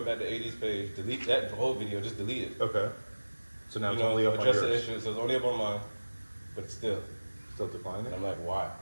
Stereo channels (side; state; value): both; inverted; correlation -1.00